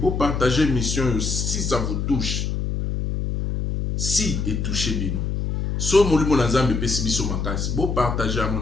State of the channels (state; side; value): noise; left; hum, 1 dB below the sound